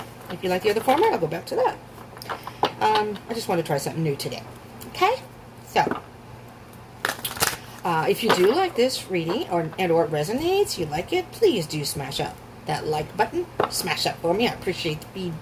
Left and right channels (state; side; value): identical; both; correlation 1.00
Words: if you like the other format, I'll go back to that. I just want to try something new today. Okay? So, if you do like this reading or it resonates, you like it, please do smash up that like button. Smash up for me. I appreciate the